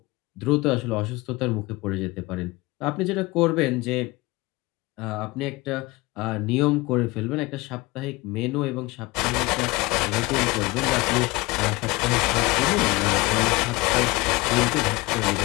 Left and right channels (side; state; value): right; quieter; 22.5 dB